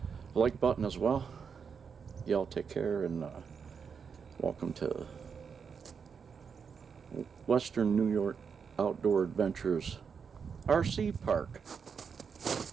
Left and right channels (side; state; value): left; quieter; 6.3 dB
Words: like button as well. Y'all take care, and welcome to Western New York Outdoor Adventures RC Park.